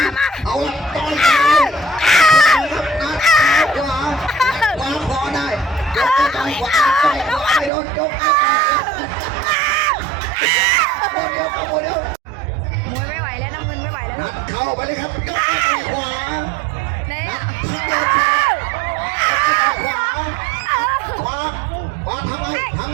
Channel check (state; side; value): drops out; left; at 7.7 s